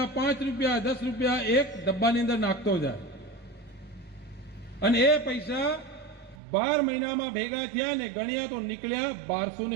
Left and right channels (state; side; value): drops out; left; at 6.4 s